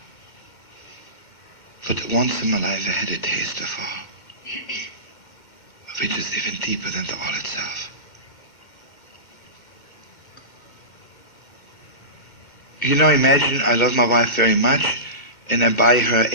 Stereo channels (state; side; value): late; right; 2.1 ms